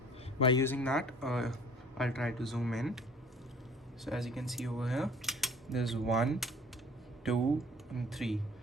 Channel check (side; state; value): both; normal; correlation 0.50